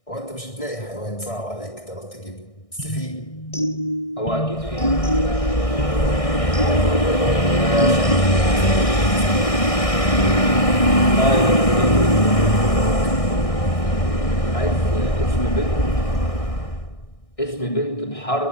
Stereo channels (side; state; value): right; late; 1.6 ms